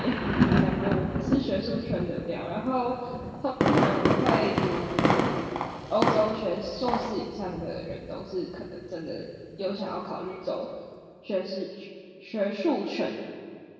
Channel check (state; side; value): identical; both; correlation 1.00